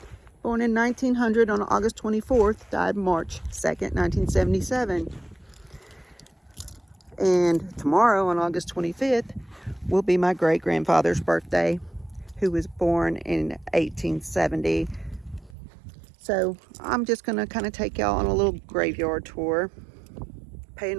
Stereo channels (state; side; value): drops out; left; at 15.6 s